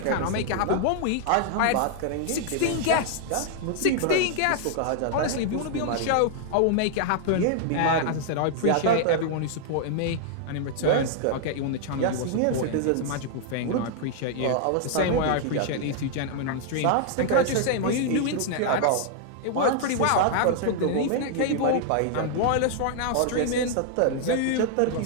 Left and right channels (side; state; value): both; different; correlation 0.00